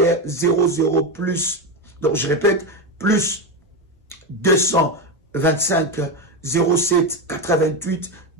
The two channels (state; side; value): normal; both; correlation 0.13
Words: 00 plus, donc je répète, plus 225 07 88